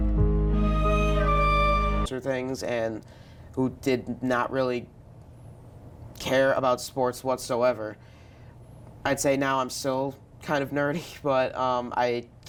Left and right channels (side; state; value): both; identical; correlation 1.00